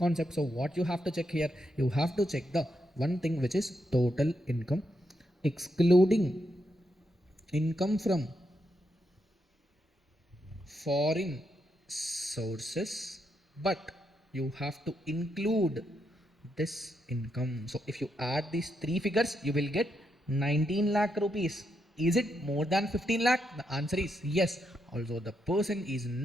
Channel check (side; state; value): both; normal; correlation 0.81